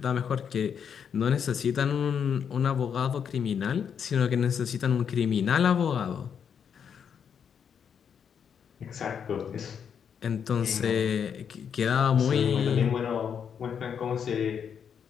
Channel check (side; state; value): right; quieter; 7.5 dB